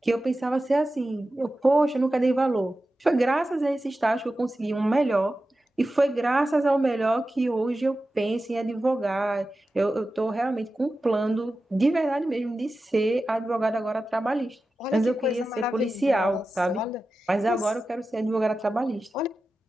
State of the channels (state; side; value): normal; both; correlation 0.93